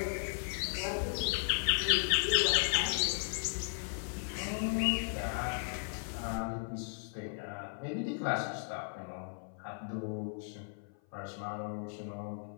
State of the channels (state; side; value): silent; right; 54 dB below the other